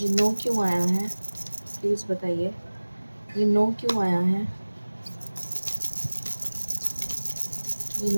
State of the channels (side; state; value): both; inverted; correlation -1.00